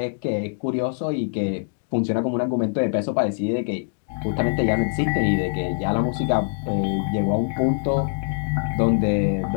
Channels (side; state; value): right; silent; digital silence